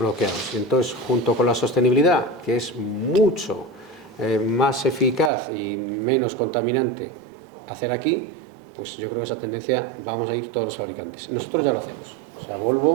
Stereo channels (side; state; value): left; drops out; at 5.3 s